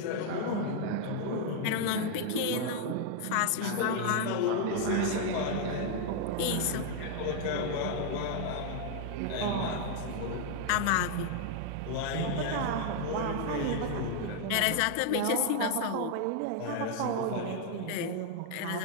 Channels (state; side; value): different; both; correlation 0.00